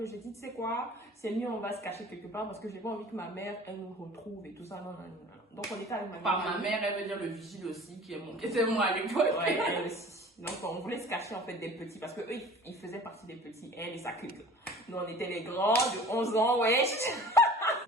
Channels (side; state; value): both; normal; correlation 0.44